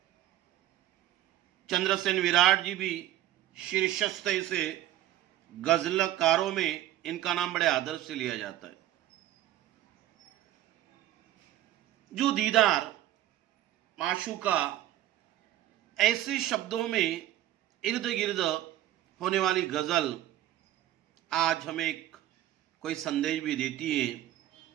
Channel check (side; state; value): left; quieter; 13.5 dB